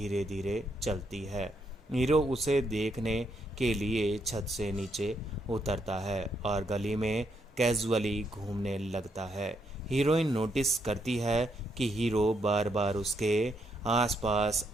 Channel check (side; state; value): both; normal; correlation 0.77